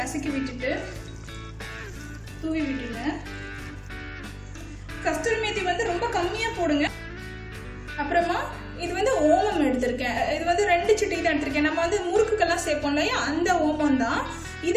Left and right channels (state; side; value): identical; both; correlation 1.00